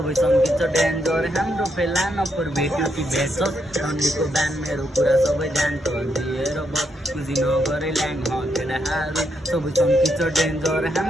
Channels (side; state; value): both; normal; correlation 0.78